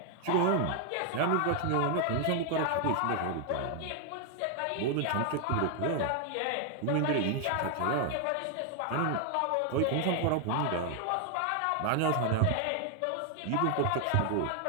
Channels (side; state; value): both; different; correlation 0.00